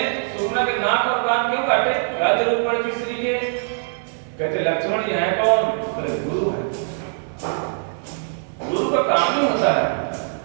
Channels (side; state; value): left; silent; digital silence